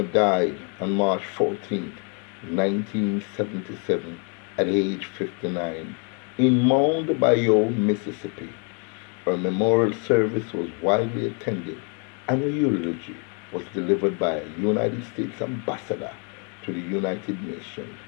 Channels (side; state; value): right; quieter; 37.6 dB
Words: died on March 14, 1977, at age 59, in Mound Bayou, Mississippi. Her memorial service was widely attended, and a eulogy was delivered by a United States ambassador to the United Nations,